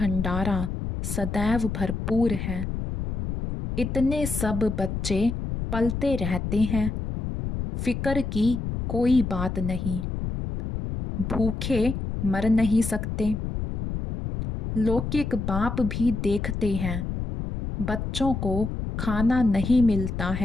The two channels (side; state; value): left; noise; rumble, 4 dB below the sound